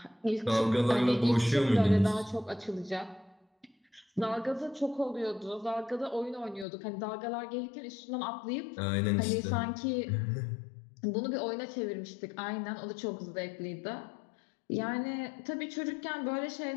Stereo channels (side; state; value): right; drops out; at 6.7 s